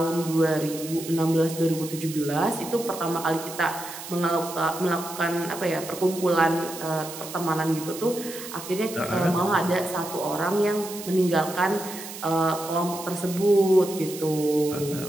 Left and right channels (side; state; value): right; noise; hiss, 11 dB below the sound